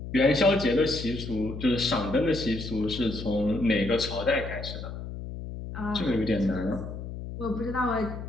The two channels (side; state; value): left; noise; hum, 9 dB below the sound